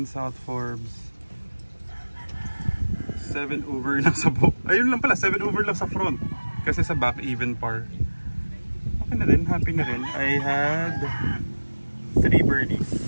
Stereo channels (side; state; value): both; inverted; correlation -1.00